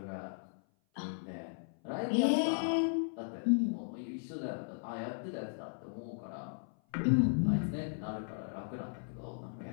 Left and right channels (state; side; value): silent; right; 54 dB below the other